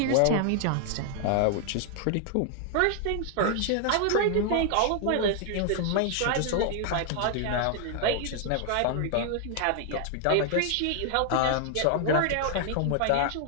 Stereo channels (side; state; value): both; different; correlation 0.00